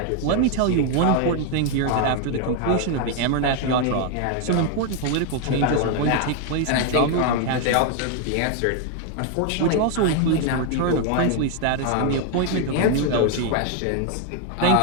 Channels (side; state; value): both; different; correlation 0.01